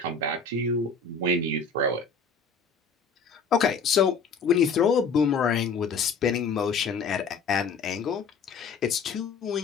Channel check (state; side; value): quieter; right; 5.0 dB